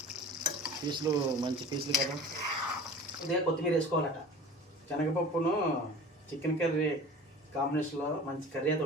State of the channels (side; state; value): both; normal; correlation 0.39